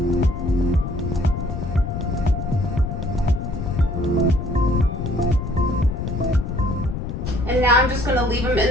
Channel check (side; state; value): left; noise; rumble, 5 dB below the sound